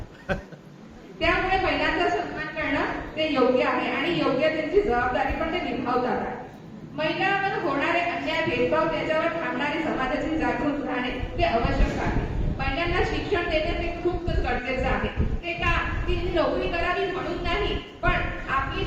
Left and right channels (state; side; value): identical; both; correlation 1.00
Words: त्यामुळे महिलांचा सन्मान करणं ते योग्य आहे आणि योग्य त्यांची जबाबदारी पण ते निभावतात आहे. महिलांवर होणारे अन्याय, भेदभाव, त्याच्यावर थांबणारी समाजाची जागृत राहणे ते आवश्यक आहे. महिलांना शिक्षण देणे ते खूप गरजेचं आहे. ते का ती नोकरी करावी म्हणून नाही, पण आपली